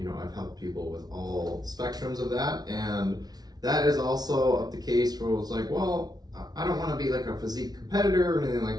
helped people with all spectrums of that. And that is also the case where it's like, well, I don't want to be like a physique competitor or anything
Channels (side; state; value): left; late; 0.19 ms